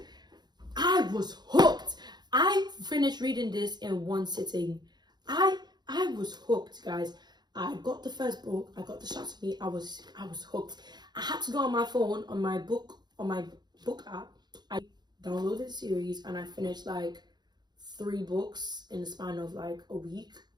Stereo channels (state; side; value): late; left; 0.20 ms